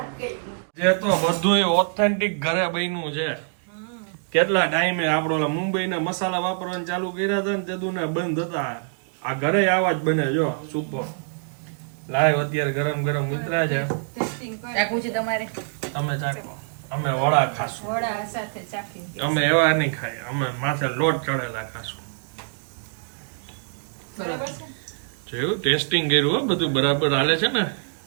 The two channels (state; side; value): silent; left; digital silence